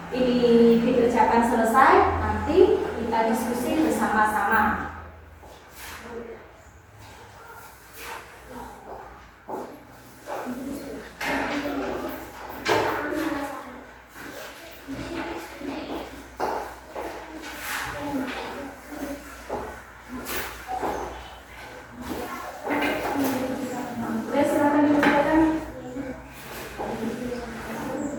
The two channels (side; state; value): both; identical; correlation 1.00